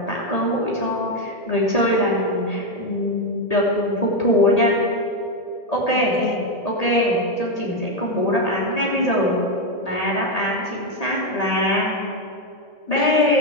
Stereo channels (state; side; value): late; right; 1.8 ms